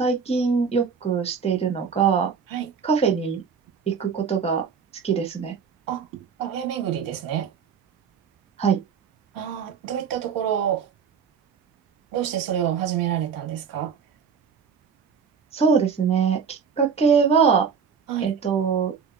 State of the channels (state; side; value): quieter; left; 6.4 dB